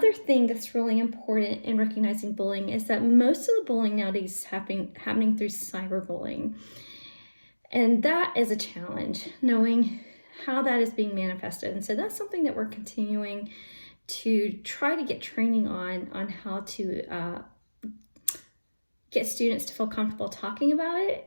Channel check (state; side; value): inverted; both; correlation -1.00